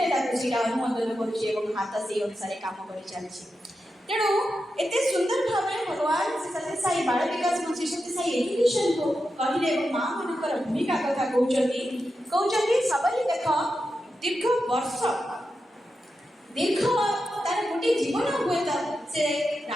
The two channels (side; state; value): both; normal; correlation 0.89